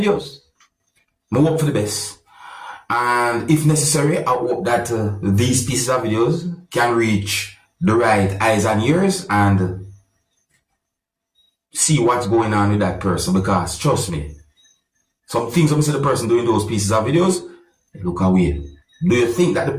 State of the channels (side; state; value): both; identical; correlation 1.00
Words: I hope for the best. And if necessary, I hope that these pieces of videos can reach the right eyes and ears and see what's going on with that person, because trust me, some things I'm the person doing those pieces of videos, look away. Do you think that